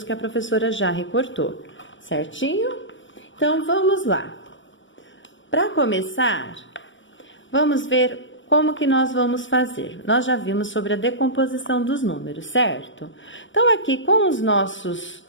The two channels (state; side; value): late; right; 0.55 ms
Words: que a professora já recortou, certinho? Então, vamos lá. Para começar, vamos ver como que nós vamos fazer. Nós já vimos sobre a decomposição dos números, certo? Então, aqui com os nossos